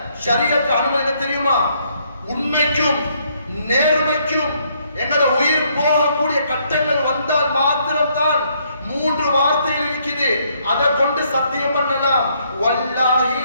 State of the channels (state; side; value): inverted; both; correlation -0.70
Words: ஷரியத் அனுமதி தெரியுமா? உண்மைக்கும் நேர்மைக்கும் எங்களோட உயிர் போகக்கூடிய கட்டங்கள் வந்தால் மாத்திரம்தான் 3 வார்த்தைகள் இருக்குது, அதை கொண்டு சத்தியம் பண்ணலாம். வல்லாஹி